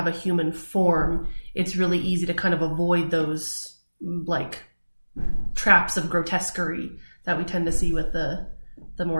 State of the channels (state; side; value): inverted; both; correlation -1.00